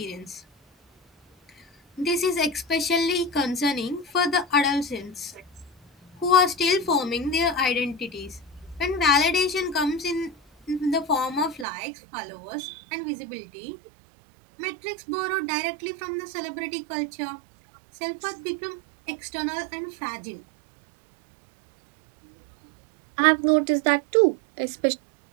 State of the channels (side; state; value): left; drops out; at 11.7 s